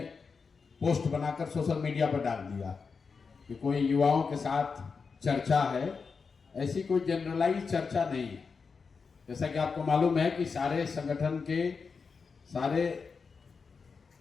पोस्ट बनाकर सोशल मीडिया पर डाल दिया कि कोई युवाओं के साथ चर्चा है। ऐसी कोई जनरलाइज चर्चा नहीं है। जैसा कि आपको मालूम है कि सारे संगठन के सारे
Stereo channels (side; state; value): right; quieter; 5.2 dB